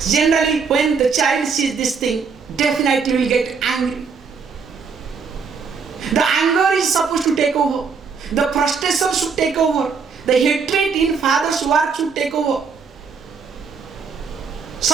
Generally, when the child sees this thing, definitely will get angry. The anger is supposed to take over. The frustration should take over. The hatred in father's work should take over.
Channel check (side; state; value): left; quieter; 5.5 dB